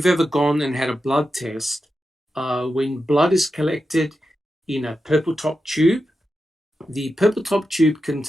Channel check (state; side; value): normal; both; correlation 0.89